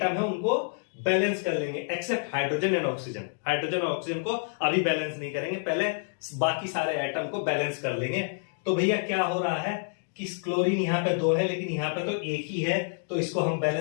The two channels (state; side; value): silent; right; digital silence